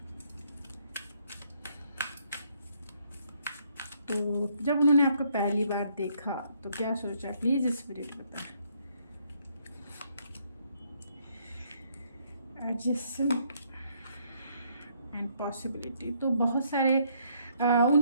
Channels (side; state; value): both; inverted; correlation -0.69